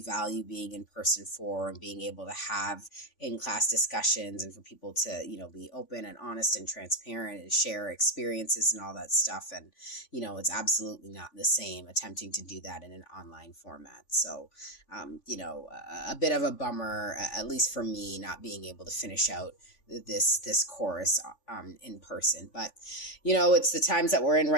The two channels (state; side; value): late; right; 3.5 ms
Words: being in person for and being able to have in class discussions and for people to, be open and honest and transparent and share experiences and all that stuff. And it's absolutely not the same attempting to do that in an online format. So, a bit of a bummer, at least for me, not being able to finish out this course in person. But, it's the times that we're in